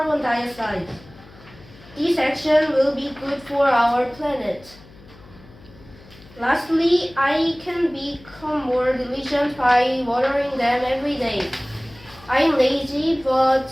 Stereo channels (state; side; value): noise; left; hum, 23 dB below the sound